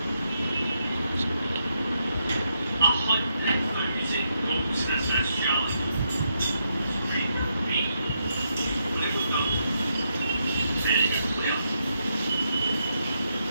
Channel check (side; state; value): both; inverted; correlation -0.81